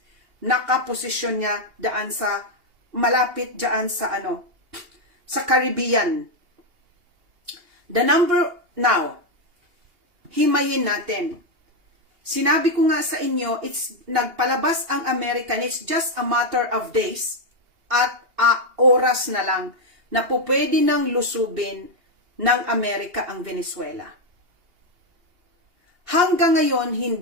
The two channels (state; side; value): late; left; 2.8 ms